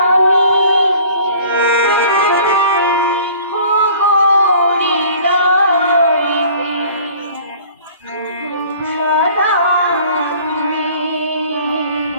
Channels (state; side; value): inverted; both; correlation -0.50